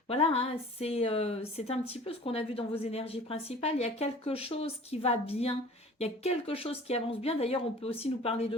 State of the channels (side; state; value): both; normal; correlation 0.45